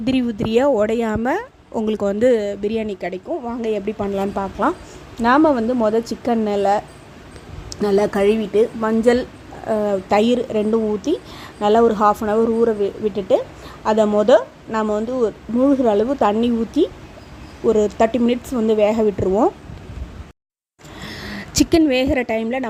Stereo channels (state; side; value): identical; both; correlation 1.00